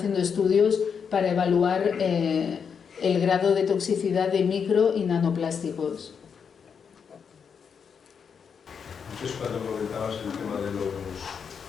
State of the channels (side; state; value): right; quieter; 6.6 dB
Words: estudios para evaluar el grado de toxicidad de micro y nanoplásticos. Antes, cuando comentabas el tema del